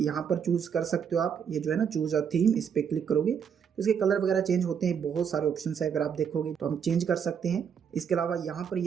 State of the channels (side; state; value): left; quieter; 7.4 dB